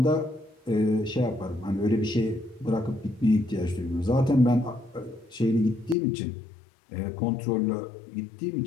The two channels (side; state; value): right; drops out; at 6.0 s